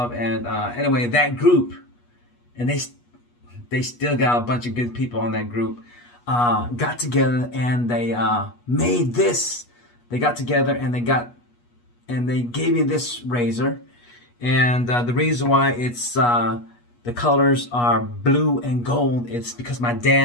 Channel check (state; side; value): late; right; 8.3 ms